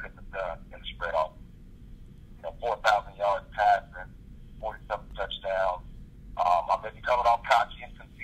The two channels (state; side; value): identical; both; correlation 1.00